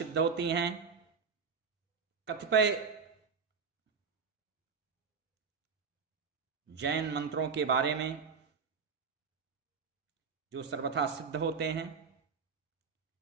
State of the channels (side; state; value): left; quieter; 5.6 dB